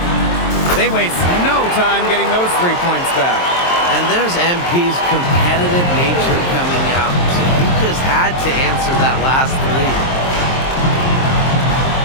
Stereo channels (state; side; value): late; right; 23 ms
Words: They waste no time getting those 3 points back. And there's MP's competitive nature coming out. So he just had to answer that last three.